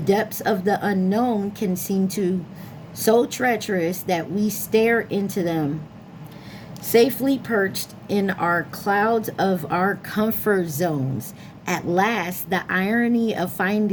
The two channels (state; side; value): identical; both; correlation 1.00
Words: of the unknown can seem so treacherous that we stare into them, safely perched in our clouds of our comfort zones. At last, the irony of